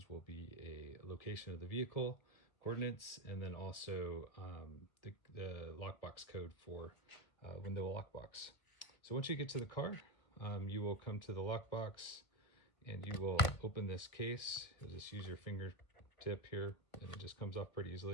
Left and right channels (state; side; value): late; right; 1.3 ms